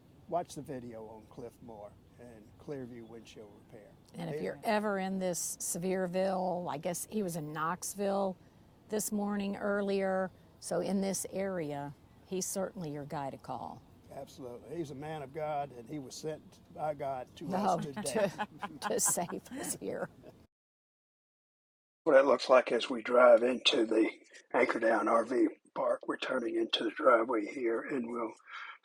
watch the video on Cliffmore and Clearview windshield repair. And if you're ever in this Sevierville, I guess he was in Knoxville this morning earlier. So in this area, he's certainly your guy to call. Absolutely. He's a man of God, and he was sent by God to us today. to save us here. What it looks like as we drive into the Anchordown RV park. We're turning into the driveway here, and we'll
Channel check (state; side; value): identical; both; correlation 1.00